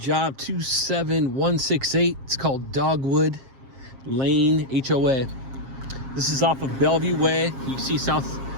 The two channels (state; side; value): late; left; 7.4 ms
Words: 27168. It's called Dogwood Lane, HOA. This is off of Bellevue Way. You can see